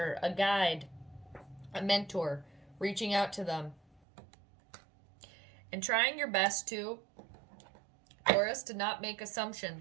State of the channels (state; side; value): drops out; left; at 4.0 s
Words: a guide, a mentor, reaching out to them and trying your best to, Taurus, to not make